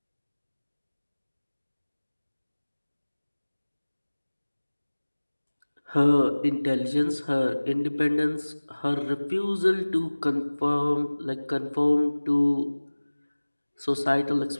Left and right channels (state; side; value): inverted; both; correlation -1.00